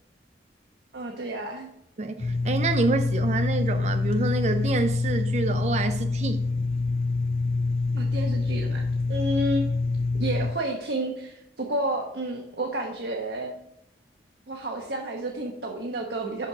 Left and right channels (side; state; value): both; normal; correlation 0.65